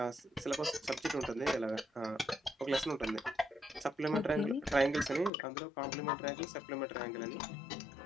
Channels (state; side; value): drops out; right; at 5.3 s